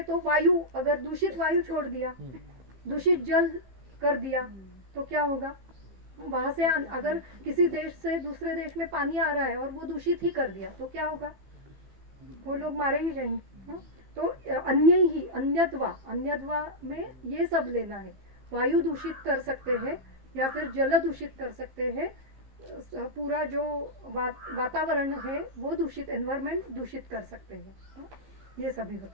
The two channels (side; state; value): left; late; 15 ms